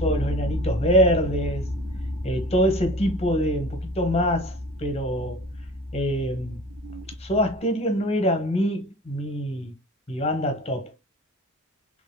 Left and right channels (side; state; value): both; normal; correlation 0.41